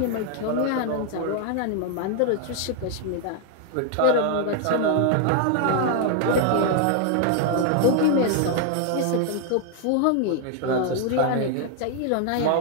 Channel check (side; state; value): both; different; correlation 0.00